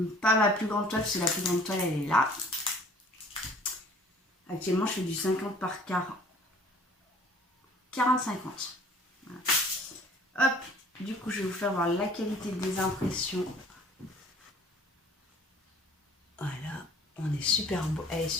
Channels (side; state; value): both; normal; correlation 0.52